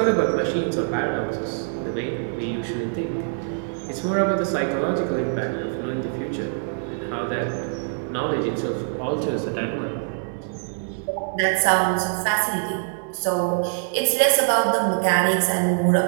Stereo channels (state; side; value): silent; left; digital silence